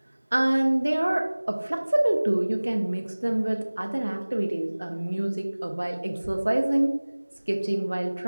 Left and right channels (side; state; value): both; inverted; correlation -1.00